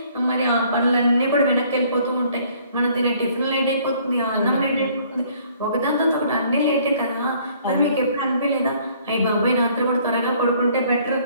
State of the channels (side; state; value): both; inverted; correlation -0.60